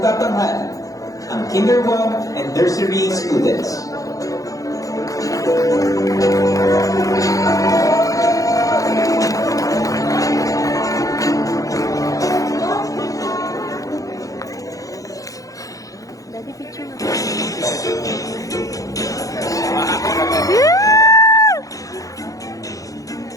ang Kinder 1 and Nursery students. Daddy, picture mo.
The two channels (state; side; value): late; right; 0.17 ms